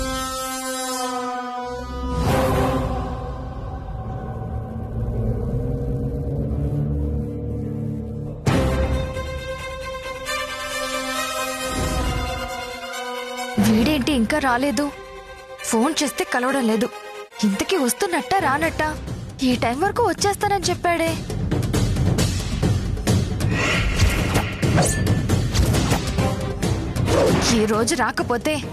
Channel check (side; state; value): both; identical; correlation 1.00